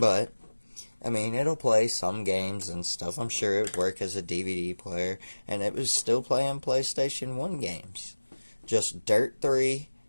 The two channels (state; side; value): inverted; both; correlation -1.00